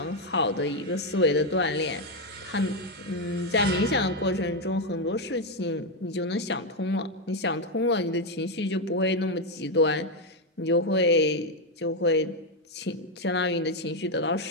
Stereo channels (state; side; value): normal; both; correlation 0.05